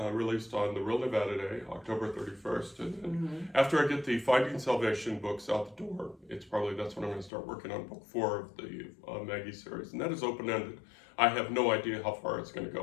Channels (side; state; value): right; drops out; at 7.3 s